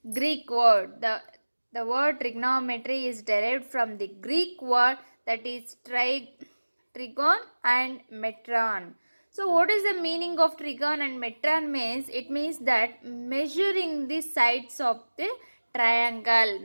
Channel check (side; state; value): both; inverted; correlation -1.00